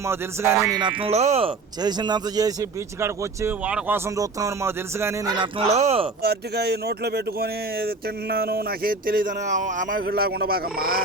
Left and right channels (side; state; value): left; quieter; 3.8 dB